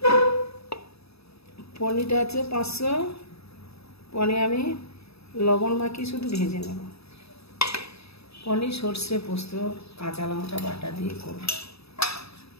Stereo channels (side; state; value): right; late; 0.78 ms